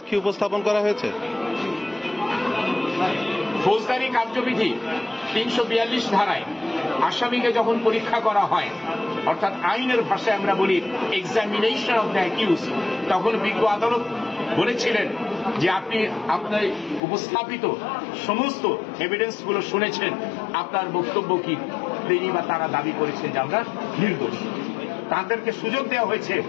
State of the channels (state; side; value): drops out; right; at 17.0 s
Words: উপস্থাপন করা হয়েছে? ফৌজদারি কার্যবিধি ৩৪২ ধারায় আসামিকে যখন পরীক্ষা করা হয়, অর্থাৎ আইনের ভাষায় আমরা বলি এক্সামিনেশন অফ দ্য অ্যাকিউজ, তখন বিজ্ঞ আদালত বলেছিলেন যে আপনি আপনার উপস্থাপিত সমস্ত এভিডেন্সগুলো শুনেছেন, আপনার বক্তব্য কি? তিনি বা তারা দাবি করেছেন যে আমরা নির্দোষ। তাদেরকে সুযোগ দেওয়া হয়েছে